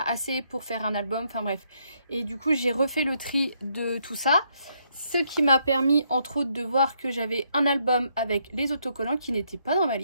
pour faire un album, enfin bref, et du coup j'ai refait le tri de tout ça, ce qui m'a permis entre autres de voir que j'avais un album avec les autocollants qui n'étaient pas dans ma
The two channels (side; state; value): both; inverted; correlation -0.74